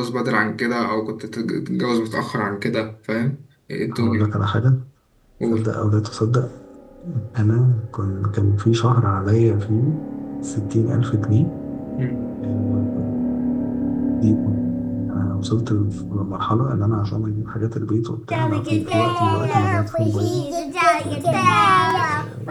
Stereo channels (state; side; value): identical; both; correlation 1.00